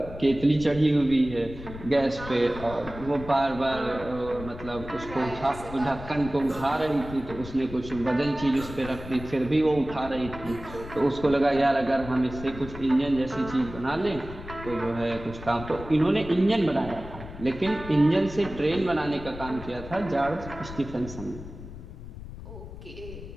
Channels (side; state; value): left; noise; rumble, 13 dB below the sound